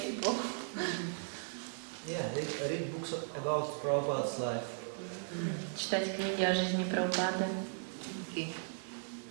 people. Yeah, read books about Prabhupada's life. Читать книги о жизни Прабхупады. Okay.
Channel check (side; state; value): left; silent; digital silence